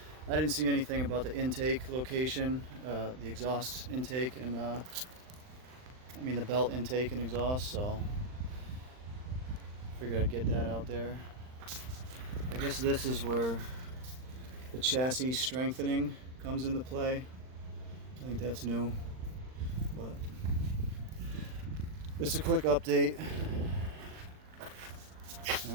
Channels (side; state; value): left; late; 39 ms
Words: didn't see anything about the intake location, the exhaust intake, and the belt intake and exhaust, so figured I'd get that out there. I guess this is where the chassis strengthening comes into play. I think that's new, but just a quick update. All